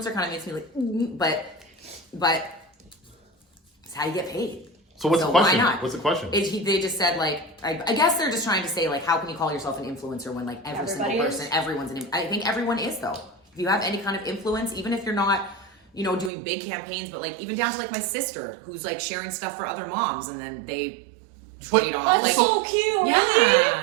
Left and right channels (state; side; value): drops out; left; at 16.3 s